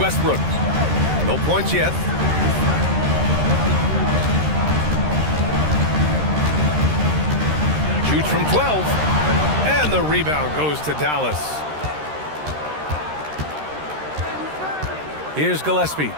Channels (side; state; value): left; late; 13 ms